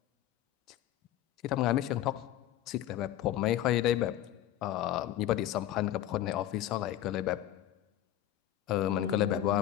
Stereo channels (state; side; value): quieter; right; 12.3 dB